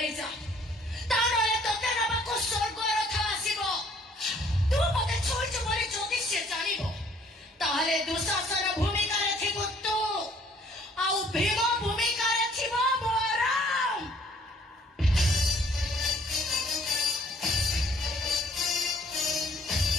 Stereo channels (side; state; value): both; normal; correlation 0.58